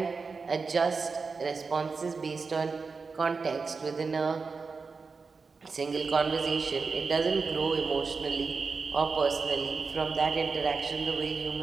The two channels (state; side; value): quieter; left; 4.7 dB